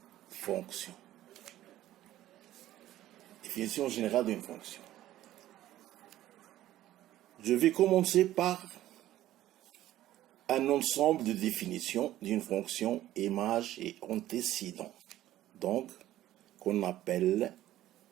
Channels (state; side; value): quieter; left; 13.9 dB